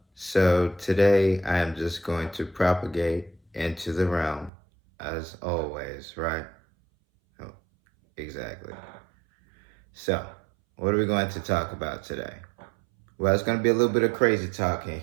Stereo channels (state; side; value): drops out; left; at 4.5 s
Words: So today I am just going to propagate into the realm, as always, right? Oh, exactly. So, what are we going to talk about today? Well, it's going to be a little bit of crazy talk in